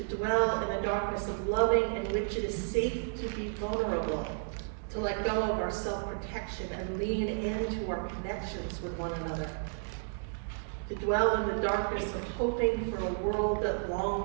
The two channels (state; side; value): silent; left; digital silence